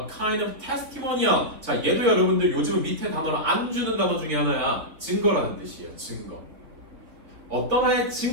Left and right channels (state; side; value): late; left; 3.2 ms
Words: kind of testimonial. 자, 얘도 여러분들 요즘 밑에 단어를 안 주는 단어 중에 하나야. 증거라는 뜻이에요, 증거. 어떤 하나의